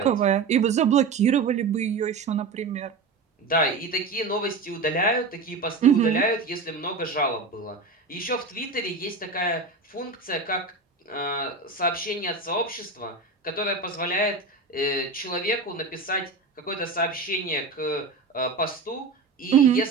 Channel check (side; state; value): left; quieter; 4.1 dB